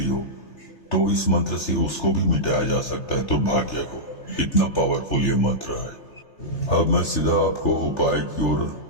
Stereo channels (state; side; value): late; right; 3.3 ms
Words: हो तो इस मंत्र से उसको भी मिटाया जा सकता है, दुर्भाग्य को। इतना पावरफुल ये मंत्र है। अब मैं सीधा आपको उपाय की ओर